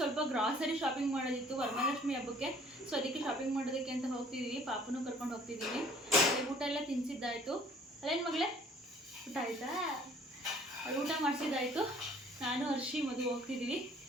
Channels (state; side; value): normal; both; correlation 0.55